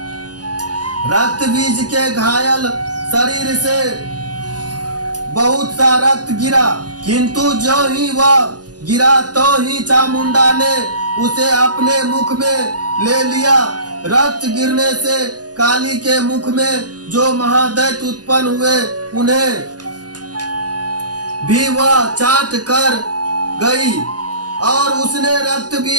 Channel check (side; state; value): left; late; 0.69 ms